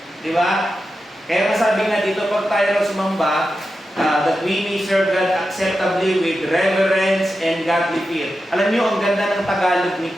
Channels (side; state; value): both; normal; correlation 0.90